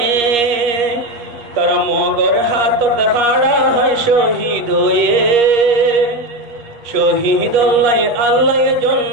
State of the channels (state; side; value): late; left; 8.5 ms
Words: তারা মগর হাততে হাড়া হয় শহীদ হয়ে শহীদ আল্লাহ